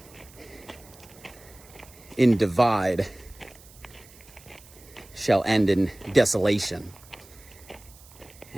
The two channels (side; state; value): right; noise; hiss, 23 dB below the sound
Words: in divide shall end in desolation,